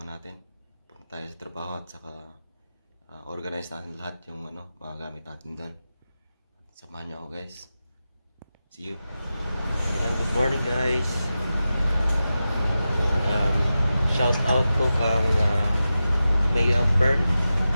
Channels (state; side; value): inverted; both; correlation -0.92